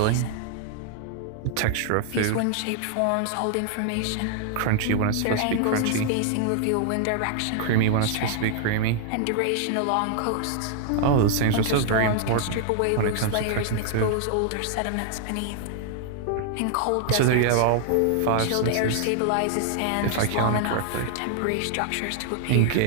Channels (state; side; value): different; both; correlation 0.00